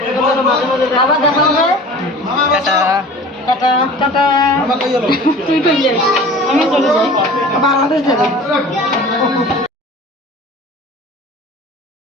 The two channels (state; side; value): normal; both; correlation 0.42